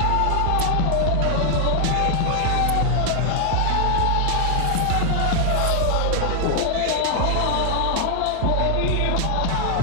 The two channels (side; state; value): both; different; correlation 0.00